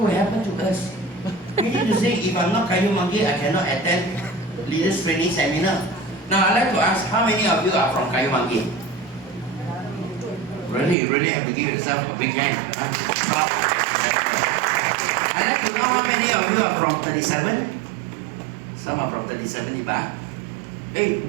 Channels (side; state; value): left; drops out; at 11.0 s